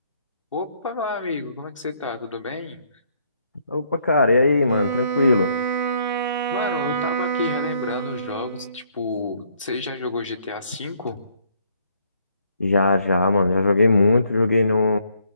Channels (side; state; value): both; inverted; correlation -0.68